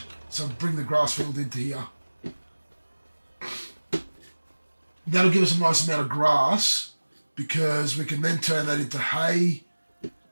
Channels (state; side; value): inverted; both; correlation -1.00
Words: So bring the grass field into here. That'll give us a nice amount of grass because we can then turn that into hay.